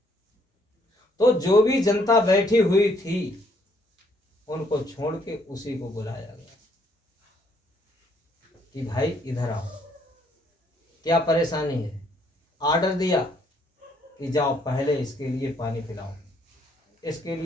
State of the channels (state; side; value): normal; both; correlation 0.68